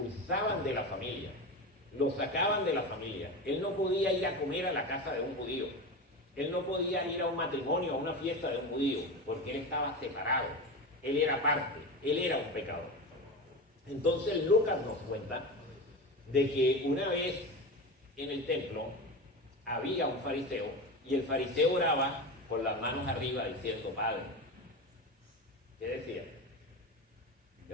de la familia, lo sacaban de la familia. Él no podía ir a comer a la casa de un judío, él no podía ir a un matrimonio, a una fiesta de un judío, porque él estaba separado, él era parte, él era un pecador. Entonces Lucas nos cuenta de que una vez en el templo había un fariseo, y el fariseo oraba con las manos arriba diciendo: Padre. ¿Qué decía?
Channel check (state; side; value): normal; both; correlation 0.24